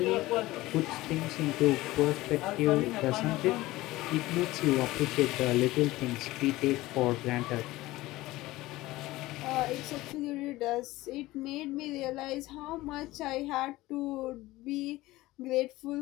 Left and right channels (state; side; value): quieter; right; 18.3 dB